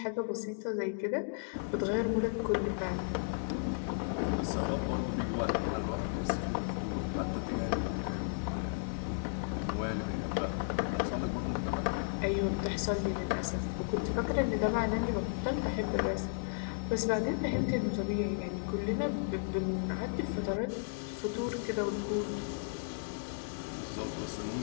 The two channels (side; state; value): right; silent; digital silence